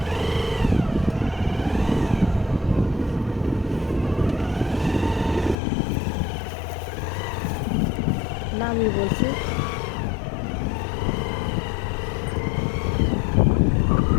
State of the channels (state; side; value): drops out; right; at 5.6 s